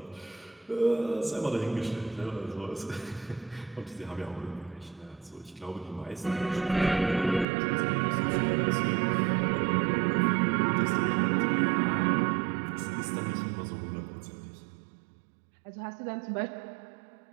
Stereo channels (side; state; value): left; drops out; at 7.5 s